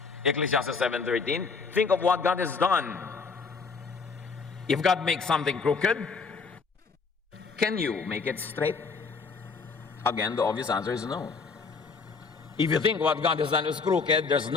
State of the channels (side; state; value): right; quieter; 4.9 dB